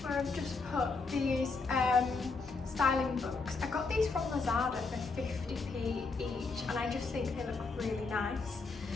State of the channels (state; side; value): quieter; right; 4.1 dB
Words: these styling books. I got these from Lazada for 50p each, and I just think they look really nice.